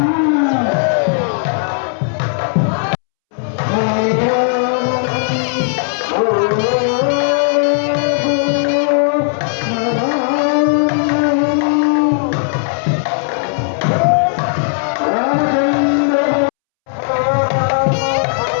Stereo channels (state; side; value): silent; right; 69 dB below the other